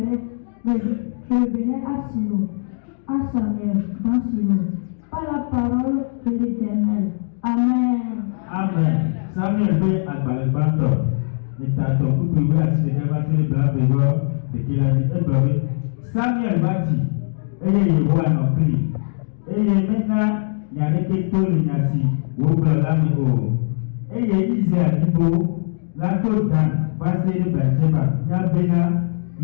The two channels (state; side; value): silent; right; digital silence